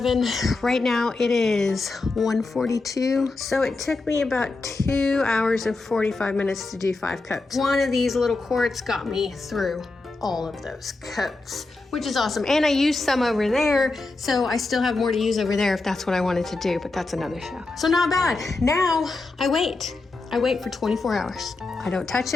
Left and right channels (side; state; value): right; quieter; 3.4 dB